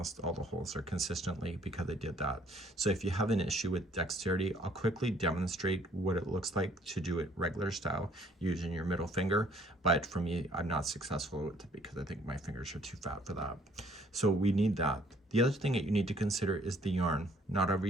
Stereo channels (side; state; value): both; normal; correlation 0.61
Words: all the holes are consistently because I did that. So if you have an issue with dexterity, I'll quickly demonstrate what it looks like to do it regular style using your middle finger, but for me, I'm not successful with it because I think my fingers are too fat for that. So we need that. The other thing that you need to consider is the yarn. Not every